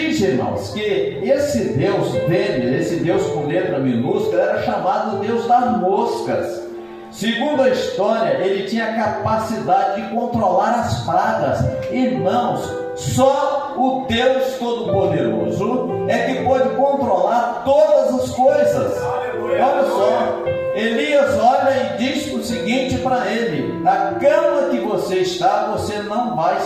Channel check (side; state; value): both; identical; correlation 1.00